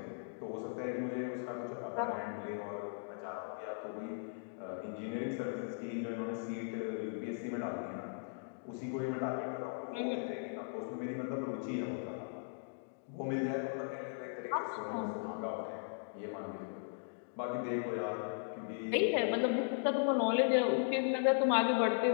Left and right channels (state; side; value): silent; right; digital silence